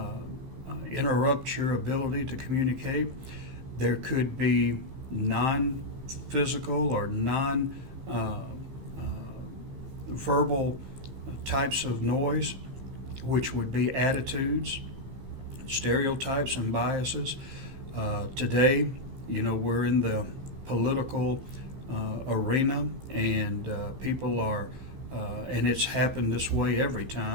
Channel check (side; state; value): left; late; 15 ms